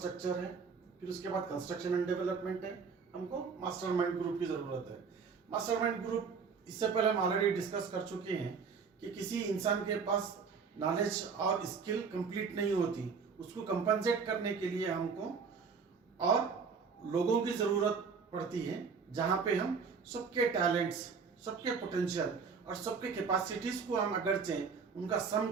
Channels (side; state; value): left; quieter; 5.6 dB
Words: है, फिर उसके बाद कंस्ट्रक्शन एंड डेवलपमेंट है, हमको मास्टरमाइंड ग्रुप की जरूरत है। मास्टरमाइंड ग्रुप इससे पहले हम ऑलरेडी डिस्कस कर चुके हैं कि किसी इंसान के पास नॉलेज और स्किल कंप्लीट नहीं होती, उसको कंपनसेट करने के लिए हमको और लोगों की ज़रूरत पड़ती है, जहाँ पे हम सबके टैलेंट्स, सबके पोटेंशियल और सबके कैपेसिटीज़ को हम अगर चाहें उनका सम